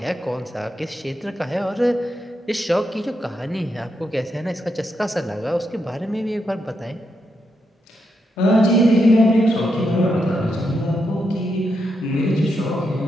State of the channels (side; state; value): both; normal; correlation 0.82